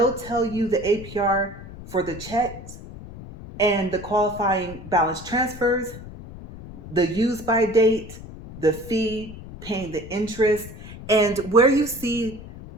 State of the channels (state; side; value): noise; left; rumble, 14 dB below the sound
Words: tell you the APR for the checks and the qualifying balance transfers, the use by date, the fee, paying the interest, and where you see